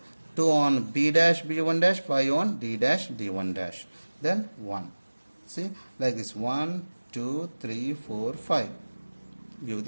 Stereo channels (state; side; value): inverted; both; correlation -1.00